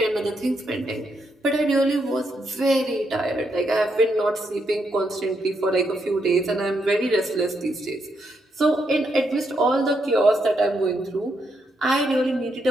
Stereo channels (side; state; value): both; normal; correlation 0.79